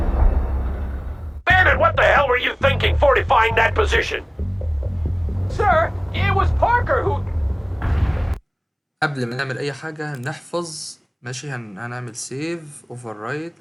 Bannon, what the hell were you thinking fortifying that position? Sir, it was Parker who... قبل ما نعمل أي حاجة نحفظ. ماشي هنعمل سيف اوفر رايت.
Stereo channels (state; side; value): identical; both; correlation 1.00